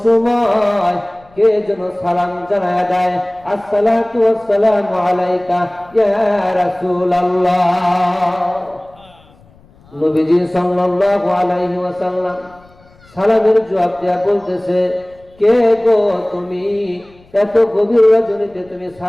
সময় কে যেন সালাম জানায় দেয়, আসসালাতু ওয়াসসালামু আলাইকা ইয়া রাসূলুল্লাহ। নবীজি সাল্লাল্লাহু আলাইহি ওয়াসাল্লাম সালামের জবাব দেয়া বলতেছে, কে গো তুমি? এত গভীর রজনীতে তুমি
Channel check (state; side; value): noise; left; rumble, 28 dB below the sound